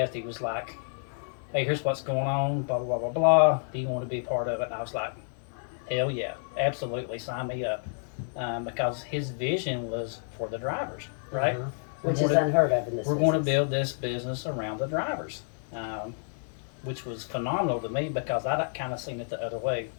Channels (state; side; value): silent; right; 58 dB below the other